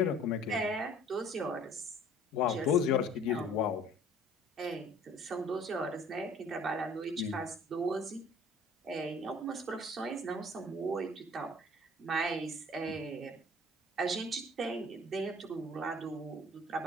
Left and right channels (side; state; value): both; normal; correlation 0.52